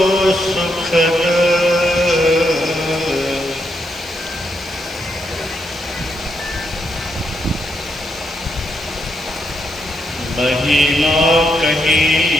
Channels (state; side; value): normal; both; correlation 0.80